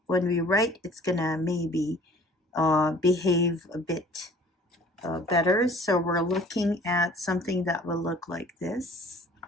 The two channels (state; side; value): normal; both; correlation 0.50